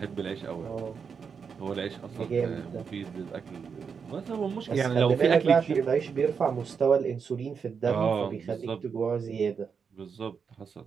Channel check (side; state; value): left; quieter; 6.2 dB